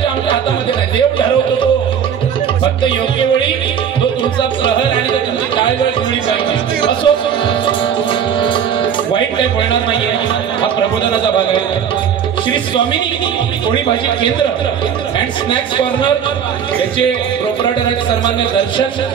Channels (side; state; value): left; quieter; 8.1 dB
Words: आमच्या हातामध्ये नाही. देव ठरवतो तो. फक्त योग्य वेळी तो तुमचा प्रहर आणि तो तुमची काय वेळ जुळली पाहिजे. असो वाईट काही होणार नाहीये. हा प्रबोधनाचा भाग आहे. श्री स्वामिनी पोळी भाजी केंद्र अँड स्नॅक्स कॉर्नर याचे प्रोपरायटर आहेत सन्मान्य दर्शन